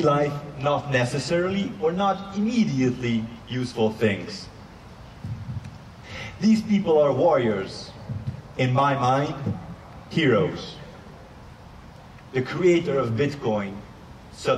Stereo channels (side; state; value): both; identical; correlation 1.00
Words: not necessarily or not immediately useful things. These people are warriors, in my mind, heroes. The creator of Bitcoin,